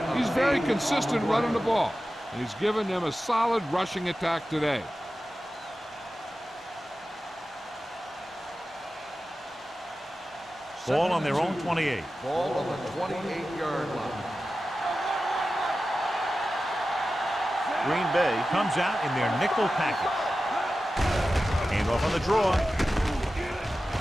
He's very consistent running the ball, and he's given them a solid rushing attack today. Ball on their own 28. Ball on the 28-yard line. Green Bay comes out in their nickel package. Hand off on the draw.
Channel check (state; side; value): normal; both; correlation 0.94